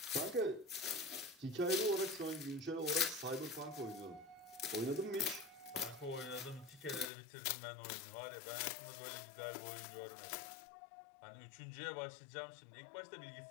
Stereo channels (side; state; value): right; drops out; at 7.1 s